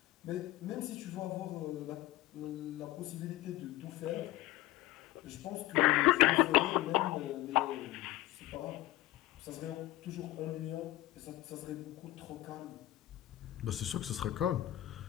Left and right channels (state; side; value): quieter; right; 15.9 dB